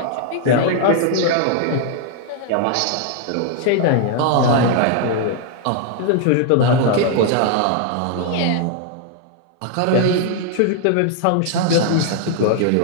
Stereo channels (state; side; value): different; both; correlation 0.00